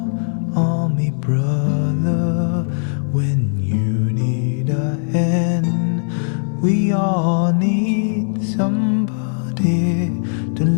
on me, brother, when you need a hand. We all need somebody to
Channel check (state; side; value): silent; right; digital silence